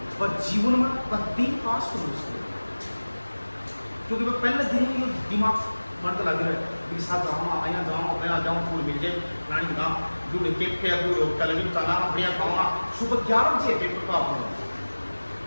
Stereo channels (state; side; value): inverted; both; correlation -1.00